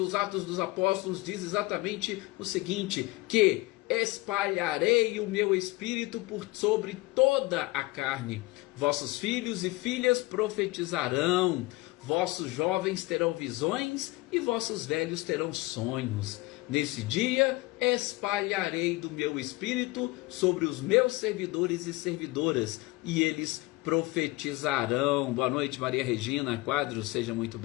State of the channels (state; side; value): quieter; right; 21.3 dB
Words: Atos dos Apóstolos diz exatamente o seguinte, que espalharei o meu espírito por sobre toda a carne. Vossos filhos e filhas profetizarão, vossos jovens terão visões e vossos velhos terão sonhos. Nesse dia espalharei do meu espírito sobre os meus servidores e servidoras, e eles profetizarão. Boa noite, Maria Regina Quadros, seja muito